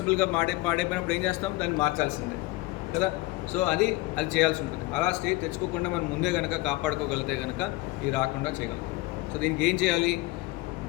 పాడైపోయినప్పుడు ఏం చేస్తాం? దాన్ని మార్చాల్సిందే కదా. సో అది చేయాల్సి ఉంటుంది. అలా స్టేజ్ తెచ్చుకోకుండా మనం ముందే కనుక కాపాడుకోగలిగితే కనుక ఇది రాకుండా చేయగలం. సో దీనికి ఏం చేయాలి?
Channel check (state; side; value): quieter; right; 20.2 dB